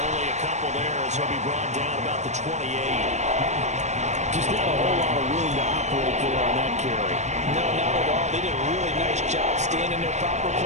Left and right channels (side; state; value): left; late; 0.34 ms